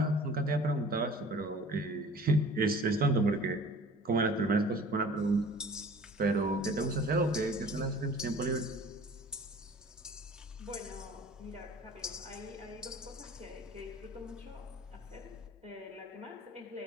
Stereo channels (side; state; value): both; normal; correlation 0.46